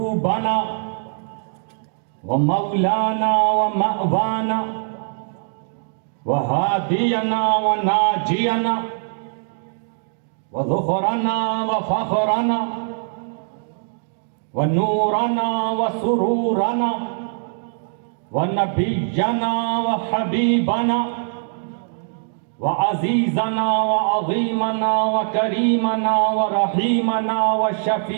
ومولانا ومأوانا وهادينا وناجينا وذخرنا وفخرنا ونورنا وسرورنا ونبينا وحبيبنا وعزيزنا وعظيمنا وكريمنا ورحيمنا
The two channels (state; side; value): silent; left; digital silence